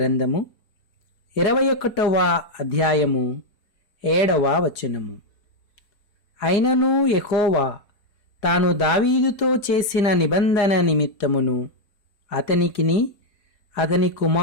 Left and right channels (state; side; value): late; right; 4.9 ms